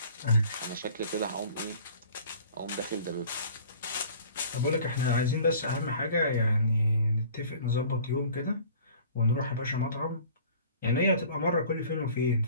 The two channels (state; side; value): inverted; both; correlation -0.49